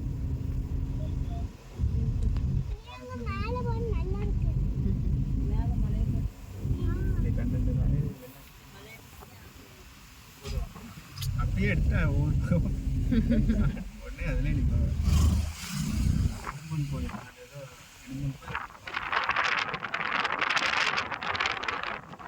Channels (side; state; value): both; identical; correlation 1.00